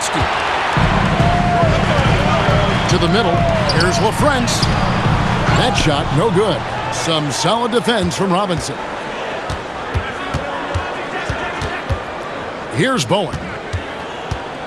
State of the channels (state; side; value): identical; both; correlation 1.00